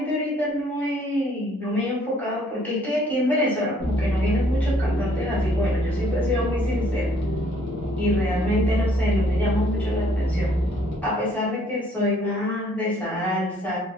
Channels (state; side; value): normal; both; correlation 0.62